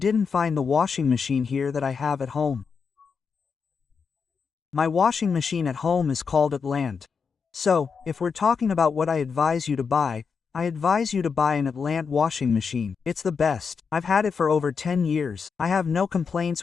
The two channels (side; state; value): right; quieter; 5.7 dB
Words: find the washing machine here that I have at home. My washing machine at home is called Atlant. So, if we're talking about what I advise you to buy, I advise you to buy an Atlant washing machine. It's the best. I've had it for over 10 years. I have no